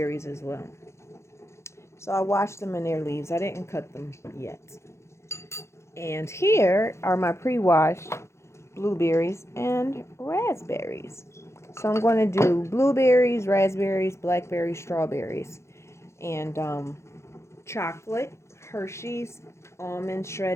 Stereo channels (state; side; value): late; right; 0.13 ms